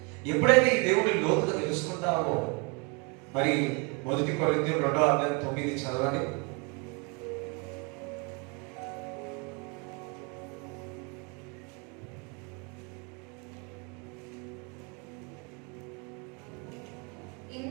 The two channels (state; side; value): quieter; left; 31.9 dB